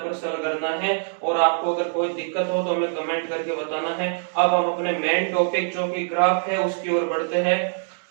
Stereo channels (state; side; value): silent; left; digital silence